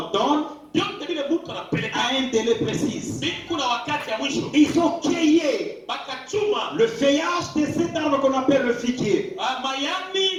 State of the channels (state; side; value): identical; both; correlation 1.00